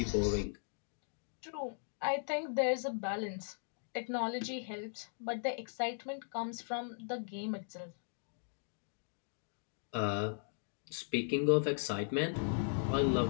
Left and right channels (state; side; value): silent; right; digital silence